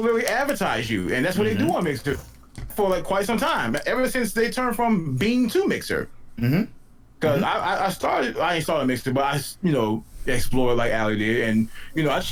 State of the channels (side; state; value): both; identical; correlation 1.00